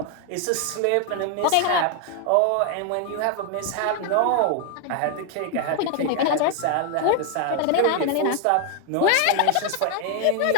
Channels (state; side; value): different; both; correlation 0.01